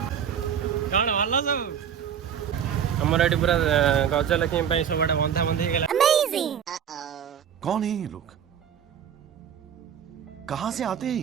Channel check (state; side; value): quieter; left; 8.4 dB